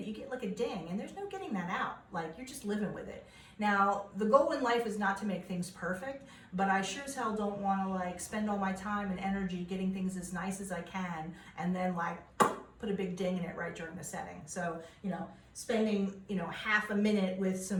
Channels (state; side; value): identical; both; correlation 1.00